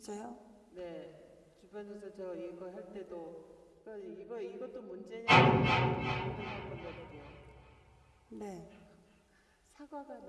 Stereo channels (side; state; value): both; identical; correlation 1.00